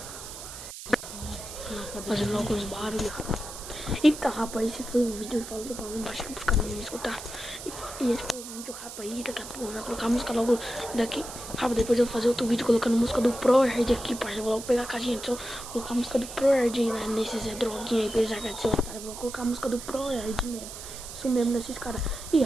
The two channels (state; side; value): noise; right; hiss, 11 dB below the sound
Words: faz. Fazendo logo os barulhos. Então, rapaz, esse foi o vídeo. Falou pra mim, baixo pros caras não me escutar. E esse foi o vídeo, rapaz. Daqui a pouco eu vou colocar a música logo daqui. Rapaz, depois eu vou fazer outro vídeo colocando a música do ProHard aqui, parça. Eu vou logo pegar a caixinha. Então, colocar a música do ProHard aí, né? Nesses droguinha aí, pra eles arregaçarem esse otário. Eu vou colocar a música do ProHard mesmo. Isso mesmo, nesses caras. E,